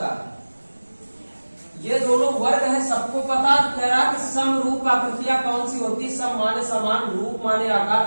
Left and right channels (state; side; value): inverted; both; correlation -1.00